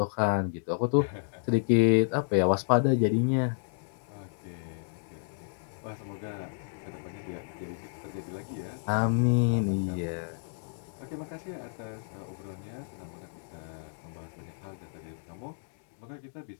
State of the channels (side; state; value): right; silent; digital silence